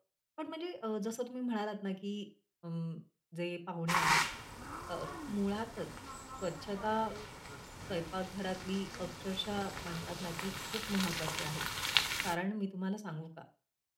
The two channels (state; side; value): identical; both; correlation 1.00